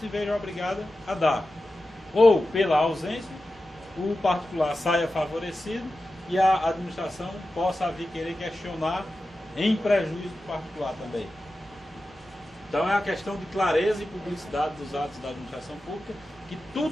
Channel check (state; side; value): normal; both; correlation 0.93